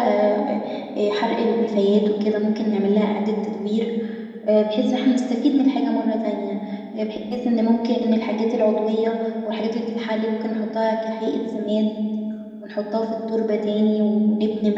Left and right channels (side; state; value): both; identical; correlation 1.00